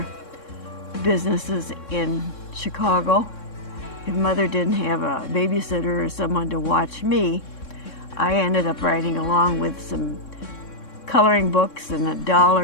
businesses in Chicago. If Mother didn't have a babysitter or someone to watch me, I ended up riding along with some coloring books and a doll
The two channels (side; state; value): right; late; 3.6 ms